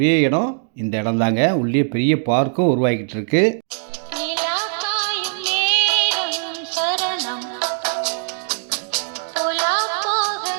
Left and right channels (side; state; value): left; silent; digital silence